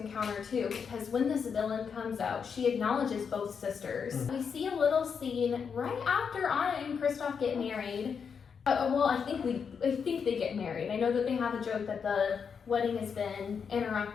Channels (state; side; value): quieter; right; 6.4 dB